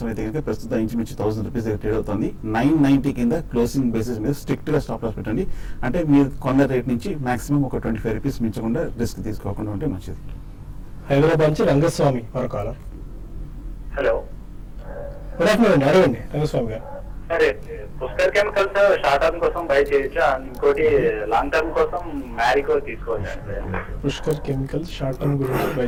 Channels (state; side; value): identical; both; correlation 1.00